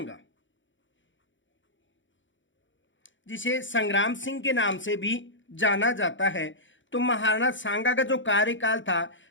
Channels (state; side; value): late; right; 0.55 ms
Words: जिसे संग्राम सिंह के नाम से भी जाना जाता है, तो महाराणा सांगा का जो कार्यकाल था